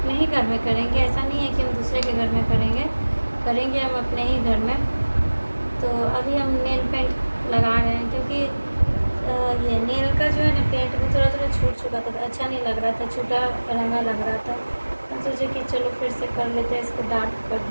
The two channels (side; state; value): both; inverted; correlation -1.00